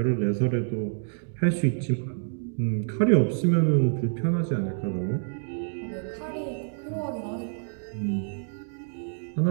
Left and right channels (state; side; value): silent; left; digital silence